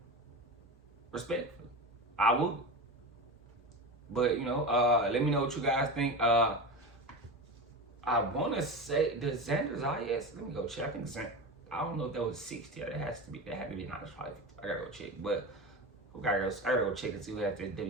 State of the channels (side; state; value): both; normal; correlation 0.25